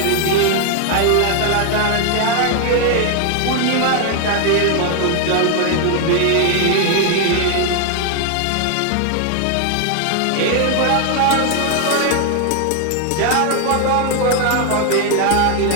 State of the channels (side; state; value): both; different; correlation 0.00